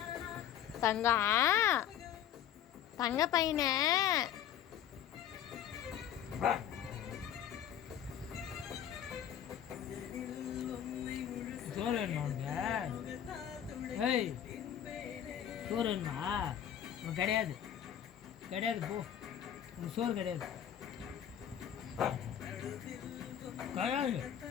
தங்கம், தங்க பையன சோறு வேணுமா? ஏய் சோறு வேணுமா? கிடையாது கிடையாது, போ. உனக்கு சோறு கிடையாது கிடையாது.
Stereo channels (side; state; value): right; quieter; 10.2 dB